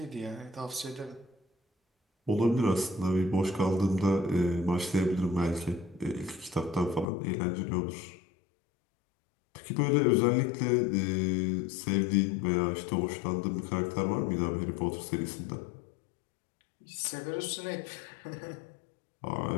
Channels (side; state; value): right; drops out; at 7.1 s